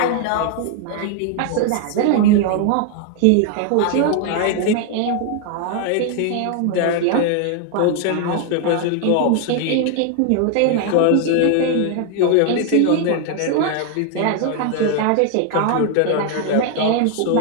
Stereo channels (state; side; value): different; both; correlation 0.00